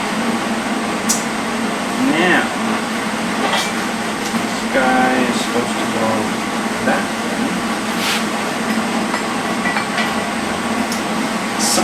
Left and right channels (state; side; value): identical; both; correlation 1.00